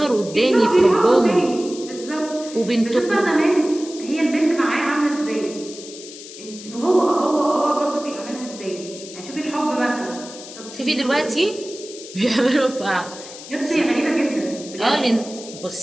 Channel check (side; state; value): left; noise; hiss, 14 dB below the sound